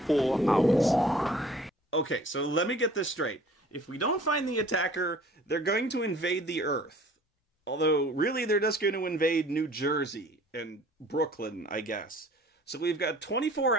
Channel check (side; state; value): both; normal; correlation 0.51